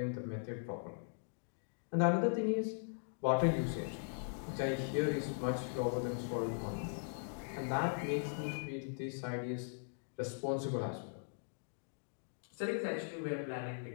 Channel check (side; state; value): right; silent; digital silence